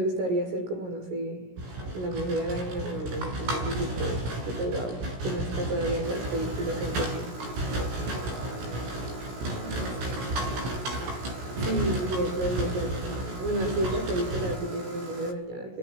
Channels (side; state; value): left; late; 16 ms